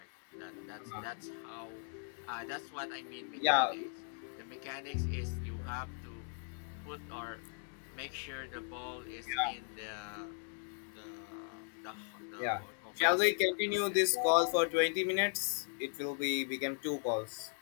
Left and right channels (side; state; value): right; silent; 53 dB below the other